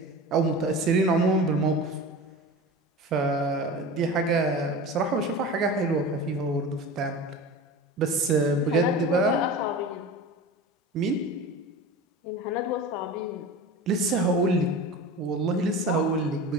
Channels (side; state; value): both; normal; correlation 0.33